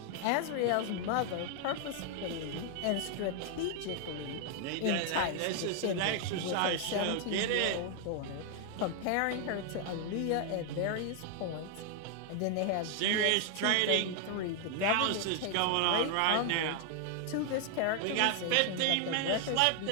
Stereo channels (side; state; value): both; different; correlation 0.00